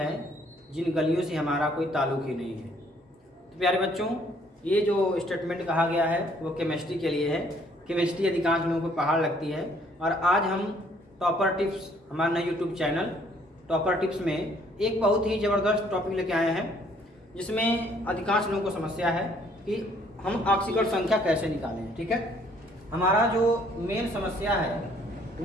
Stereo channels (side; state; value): both; normal; correlation 0.63